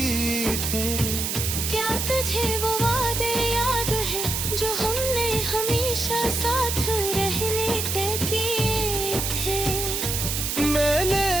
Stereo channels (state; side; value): noise; right; hiss, 1 dB below the sound